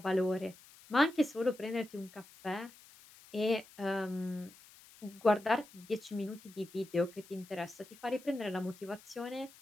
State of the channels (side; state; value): left; noise; hiss, 22 dB below the sound